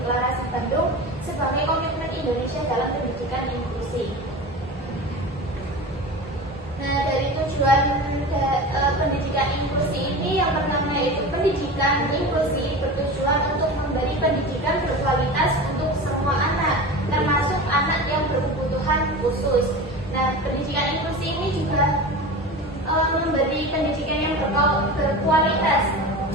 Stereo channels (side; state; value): both; normal; correlation 0.30